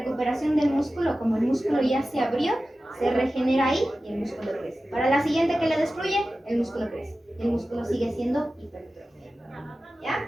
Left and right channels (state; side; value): normal; both; correlation 0.95